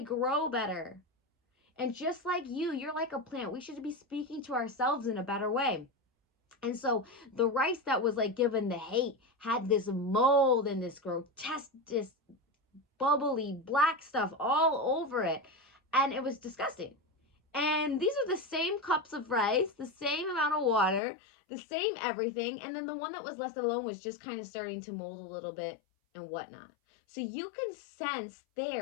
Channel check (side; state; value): right; drops out; at 21.0 s